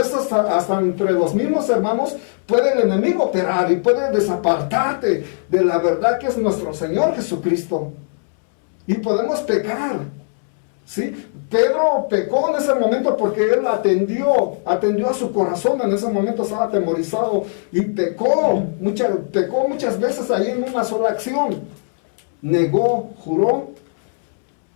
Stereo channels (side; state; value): right; silent; 66 dB below the other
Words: hasta entre los mismos hermanos puede el enemigo operar y puede desapartarte de la verdad que es nuestro Señor Jesucristo. Y podemos pecar, ¿sí? Pedro pecó en ese momento porque él atendió a su corazón. En ese momento estaba atemorizado y pecó muchas veces ahí en una sola acción. Negó, juró